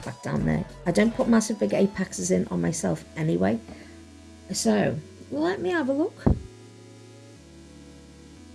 back down there. I don't put massive big apexes in on myself anyway. So let me have a look.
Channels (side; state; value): both; identical; correlation 1.00